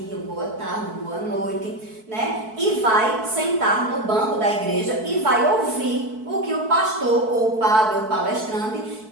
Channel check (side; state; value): left; late; 4.6 ms